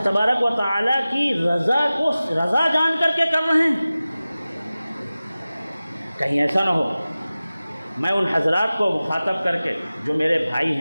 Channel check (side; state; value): both; inverted; correlation -0.97